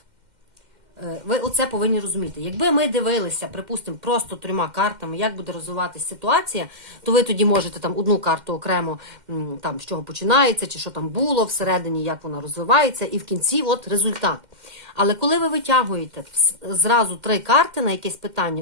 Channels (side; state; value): left; late; 2.1 ms